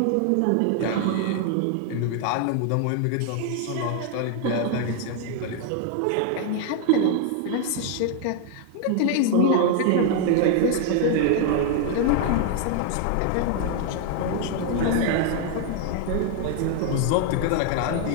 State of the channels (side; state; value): both; different; correlation 0.00